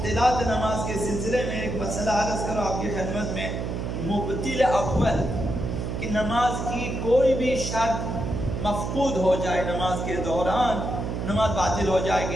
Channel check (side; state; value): right; noise; hum, 3 dB below the sound